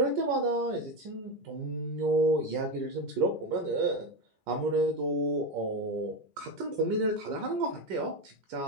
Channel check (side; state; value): left; late; 2.4 ms